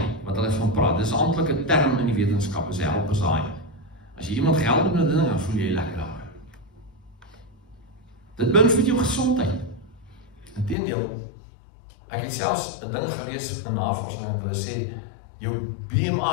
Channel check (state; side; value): drops out; right; at 10.8 s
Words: wat hulle van praat. Dis 'n amptelike term in die wetenskap, is 'n helpers high. As jy iemand gehelp het met 'n ding, dan voel jy lekker daaroor. Dit beïnvloed jou gesondheid. Inteendeel, ek het selfs 'n ding gelees in navorsing en hulle sê jou